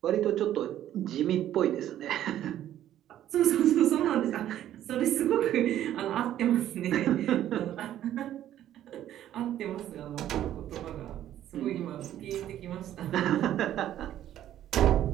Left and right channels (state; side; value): quieter; left; 11.9 dB